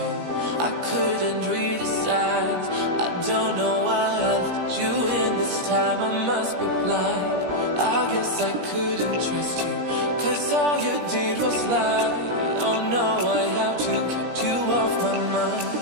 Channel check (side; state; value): left; late; 17 ms